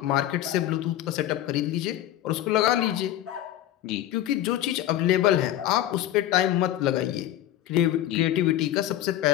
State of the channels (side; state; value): right; quieter; 12.9 dB